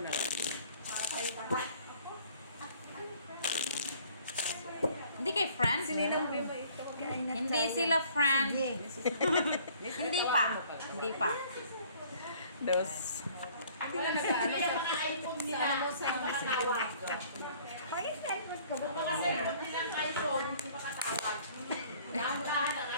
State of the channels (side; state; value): both; inverted; correlation -0.56